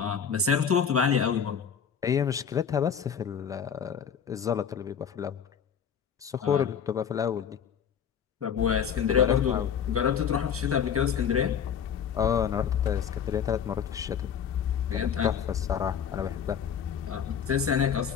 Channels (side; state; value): right; quieter; 7.7 dB